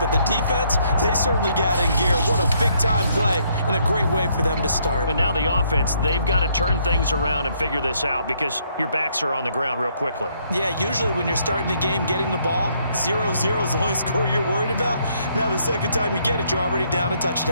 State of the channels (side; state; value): both; inverted; correlation -0.70